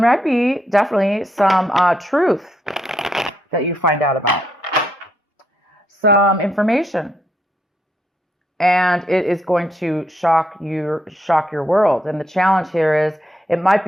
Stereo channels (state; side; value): normal; both; correlation 0.77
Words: be definitely some truth that you find out about, some information, and it is going to shock your world. And the challenge here is it might